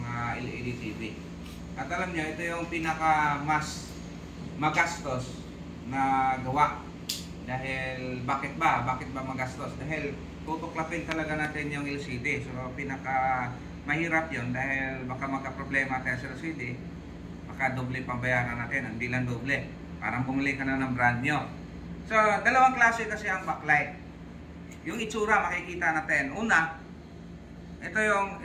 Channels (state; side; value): identical; both; correlation 1.00